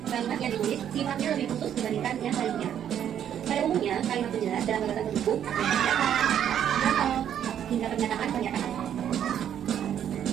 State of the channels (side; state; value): left; quieter; 9.7 dB